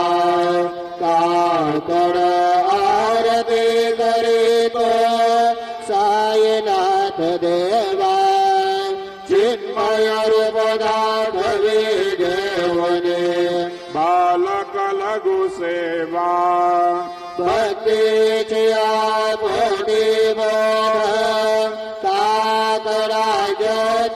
काकड आरती करीतो साईनाथ देवा चिन्मयर पदार्थ विजेवने बालक लघु सेवा भक्तीची आपोटी बोध काकडा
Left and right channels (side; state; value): both; identical; correlation 1.00